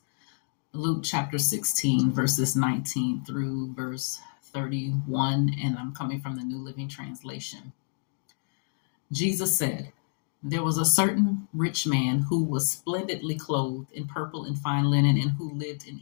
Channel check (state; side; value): silent; right; digital silence